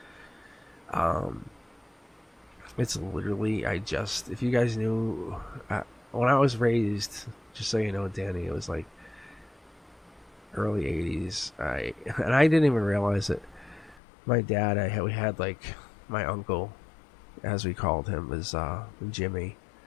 It's literally, if you guys knew, when I was raised, just so you know, Danny, it was like early 80s. I didn't even realize it. My dad, we had like my uncle, as we called him, was Jimmy,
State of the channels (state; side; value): drops out; right; at 14.0 s